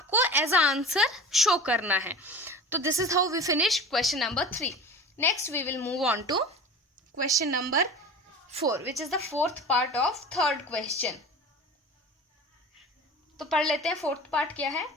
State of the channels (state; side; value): normal; both; correlation 0.35